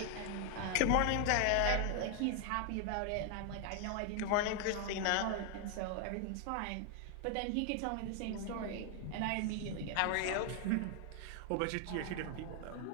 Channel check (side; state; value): both; different; correlation 0.00